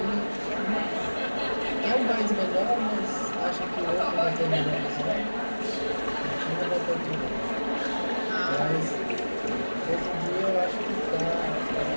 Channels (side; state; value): both; inverted; correlation -1.00